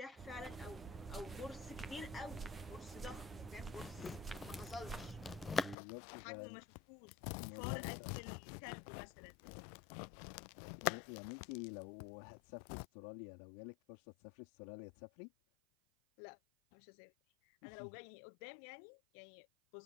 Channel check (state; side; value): drops out; right; at 5.8 s